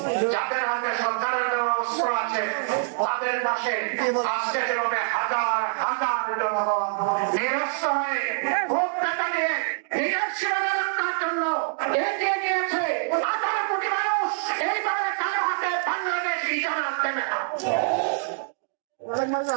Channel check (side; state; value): left; silent; digital silence